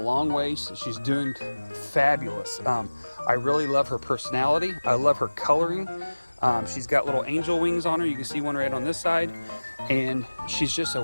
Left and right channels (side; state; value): both; inverted; correlation -1.00